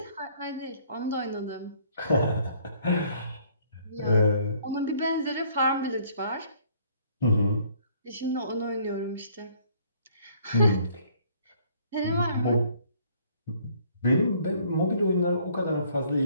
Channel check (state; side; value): inverted; both; correlation -0.61